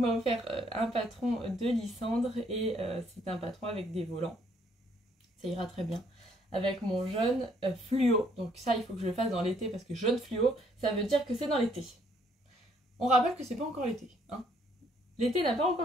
offert un patron de Lysandre et c'est un patron avec des volants. Ça ira très bien avec mon jaune fluo. Donc ça, il faut que je le fasse dans l'été parce que jaune fluo, ça veut dire que c'est dans l'été. On rappelle que c'est pas encore l'été. Hein. L'été n'a pas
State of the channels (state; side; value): normal; both; correlation 0.67